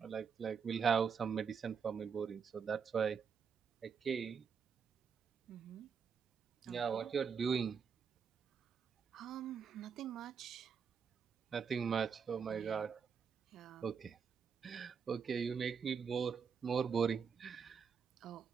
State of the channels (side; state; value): left; quieter; 6.4 dB